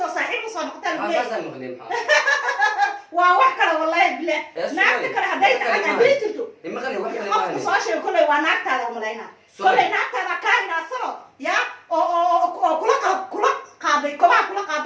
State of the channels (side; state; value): both; identical; correlation 1.00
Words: صاحب وصار مقتل ولا أساسا مقدم وواحد والله بلا نعرف كلا هدايت أنا بيتلتو إما غير واحد ما صاشي كله ونعرف هذا ملاينا كله نعرف هذا كائن أصلا يا أو كل قاضي كل